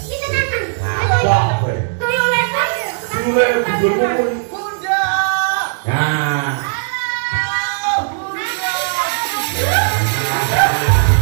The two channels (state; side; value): silent; left; digital silence